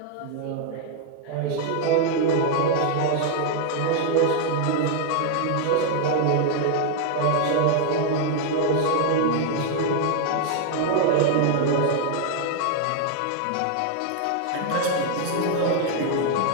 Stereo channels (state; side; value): different; both; correlation 0.00